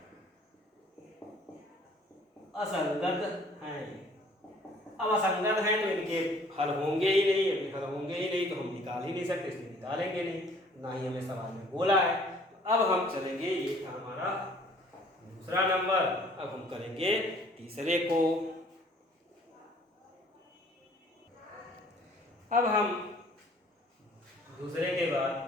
अब असंगत हैं तो इनके हल होंगे ही नहीं। अभी हल होंगे ही नहीं तो हम निकाल ही नहीं सकते, इसलिए निकालेंगे नहीं, ना ही हमें सवाल में बोला है। अब हम चलेंगे, ये था हमारा दूसरा नंबर। अब हम करेंगे तीसरे को। अब हम दूसरे के बाद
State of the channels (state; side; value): normal; both; correlation 0.56